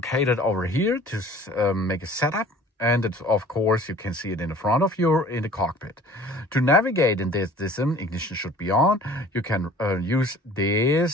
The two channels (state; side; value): normal; both; correlation 0.48